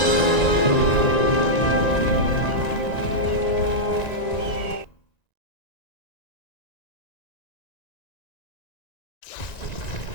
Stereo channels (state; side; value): late; right; 1.9 ms